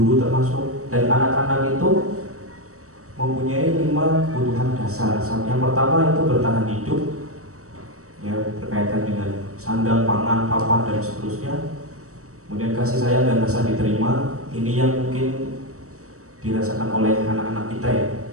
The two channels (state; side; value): late; left; 0.65 ms